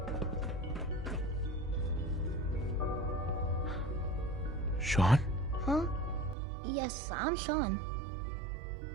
Sean? Huh? Yes, I'm Sean.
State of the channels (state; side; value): drops out; left; at 6.4 s